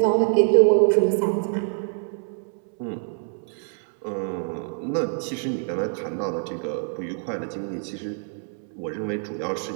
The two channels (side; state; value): left; silent; 62 dB below the other